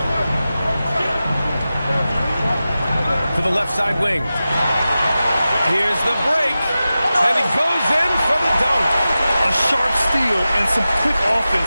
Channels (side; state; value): both; inverted; correlation -0.94